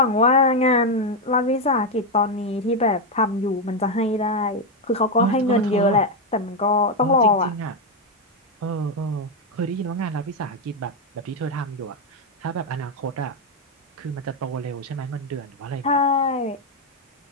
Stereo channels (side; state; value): both; normal; correlation 0.05